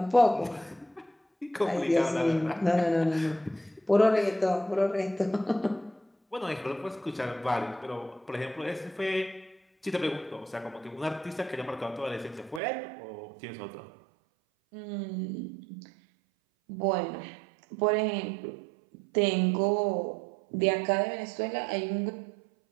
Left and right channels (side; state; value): left; drops out; at 12.6 s